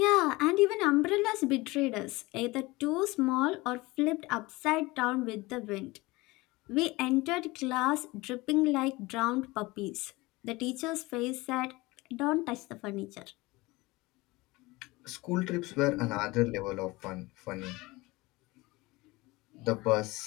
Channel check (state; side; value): quieter; right; 21.9 dB